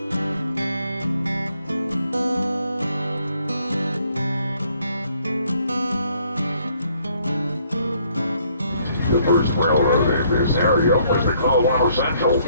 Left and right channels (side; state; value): both; inverted; correlation -0.66